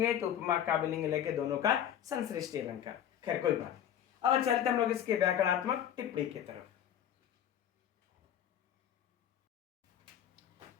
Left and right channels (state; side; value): quieter; right; 10.1 dB